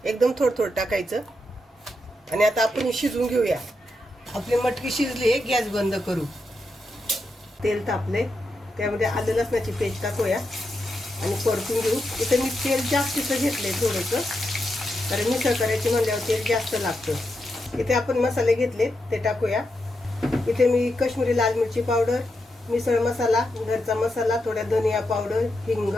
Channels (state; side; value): normal; both; correlation 0.85